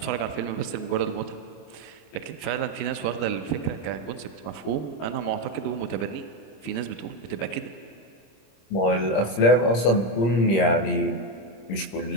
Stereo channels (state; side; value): late; right; 26 ms